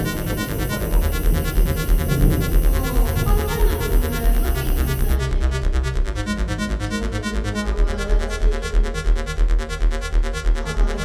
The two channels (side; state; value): both; identical; correlation 1.00